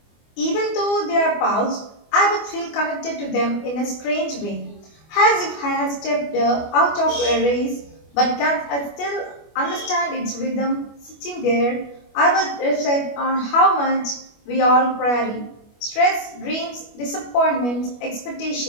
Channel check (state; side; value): late; right; 25 ms